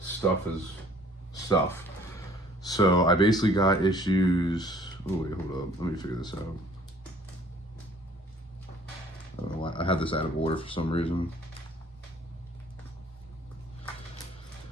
Stuff. So I basically got issues. Oh wait, hold up. Let me figure this out. I don't know why I had this out of order for some reason.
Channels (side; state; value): both; normal; correlation 0.55